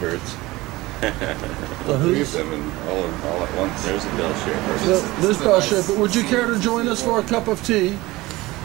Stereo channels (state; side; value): quieter; left; 19.8 dB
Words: The Three who's? of them and all at once. There's a Bele Chere. There's Bele Chere, but would you care to join us for a cup of tea?